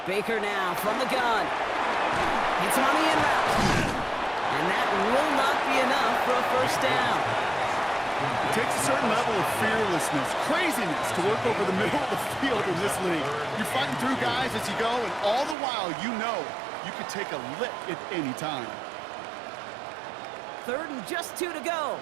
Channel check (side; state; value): left; drops out; at 15.6 s